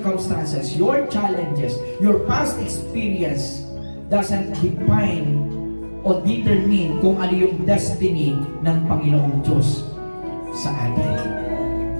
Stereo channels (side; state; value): both; inverted; correlation -1.00